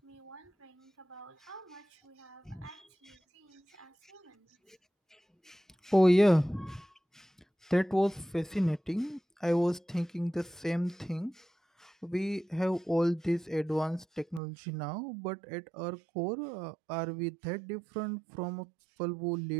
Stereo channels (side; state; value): left; drops out; at 14.4 s